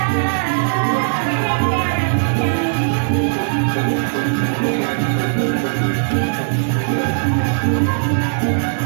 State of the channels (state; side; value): silent; left; digital silence